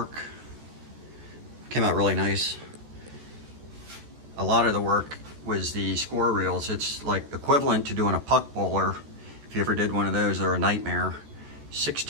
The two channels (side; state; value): left; late; 14 ms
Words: Came out really nice. A lot of the work was the score reels. It's like equivalent to doing a puck bowler. If you ever did one of those, they're a nightmare.